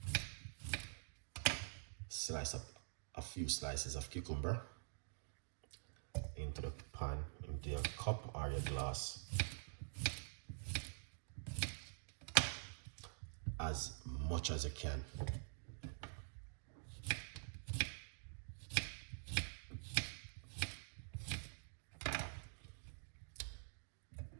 slice up a few slices of cucumber into the pan, into your cup or your glass, as much as you can.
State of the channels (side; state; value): left; silent; digital silence